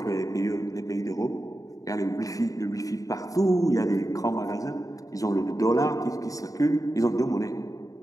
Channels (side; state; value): right; late; 0.17 ms